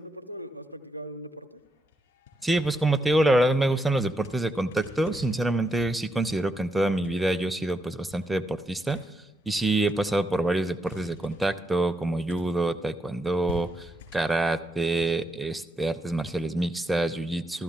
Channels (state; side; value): normal; both; correlation 0.81